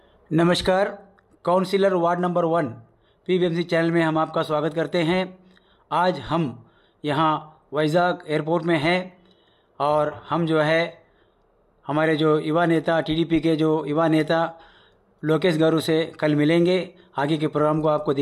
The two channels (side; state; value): both; identical; correlation 1.00